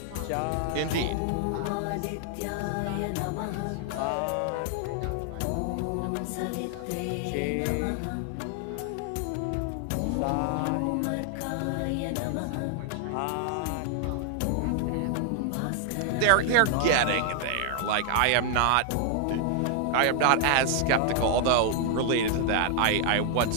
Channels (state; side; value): different; both; correlation 0.00